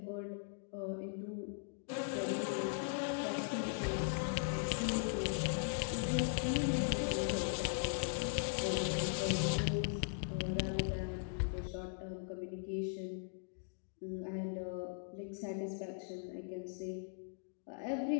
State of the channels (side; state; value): right; silent; digital silence